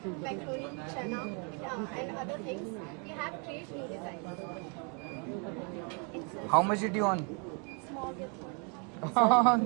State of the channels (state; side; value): quieter; left; 36.4 dB